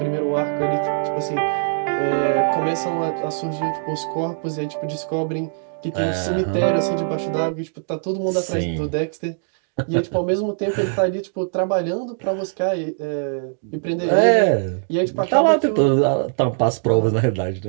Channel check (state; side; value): silent; left; digital silence